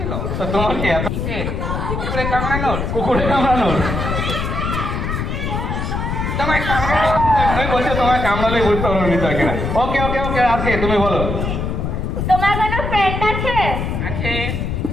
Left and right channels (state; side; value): noise; left; rumble, 2 dB below the sound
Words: তো তোমার কি এত কিসের? কুকুরে কামড়ানোর? কুকুরে কামড়ানোর? তোমায় কামড়ানো? আমি বলছি তোমার কামড়ালে বুঝতে পারো নি তাকে না। ওকে ওকে ওকে, আজকে তুমি বলো। তোমার কোনো ফ্রেন্ড আছে? আছে।